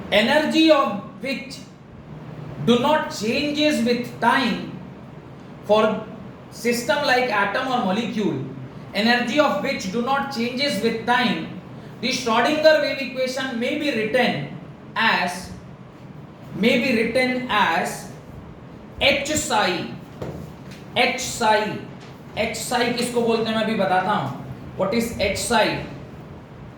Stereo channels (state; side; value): identical; both; correlation 1.00